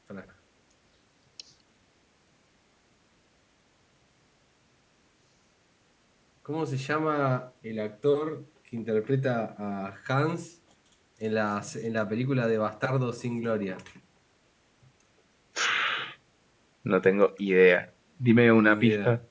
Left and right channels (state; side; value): identical; both; correlation 1.00